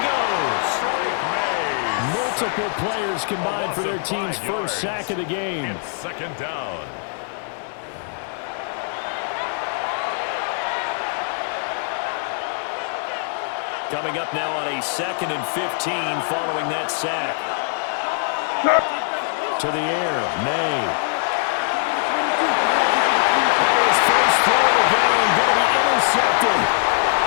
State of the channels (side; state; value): right; silent; 63 dB below the other